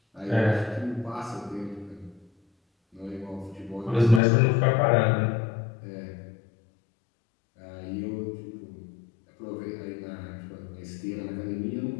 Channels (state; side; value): drops out; right; at 4.2 s